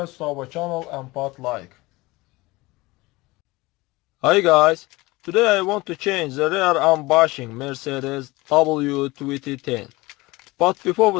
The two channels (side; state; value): right; quieter; 21.6 dB